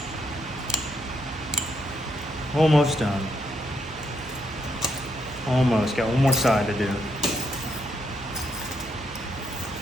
Almost done. Almost. Got one more side to do.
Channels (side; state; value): both; normal; correlation 0.77